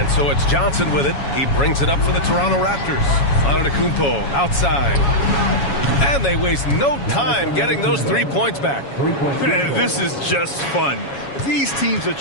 so it's Johnson with it. He brings it up for the Toronto Raptors. Antetokounmpo outside. And they waste no time getting those 3 points back. This is just fun. These teams are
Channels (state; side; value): late; right; 7.2 ms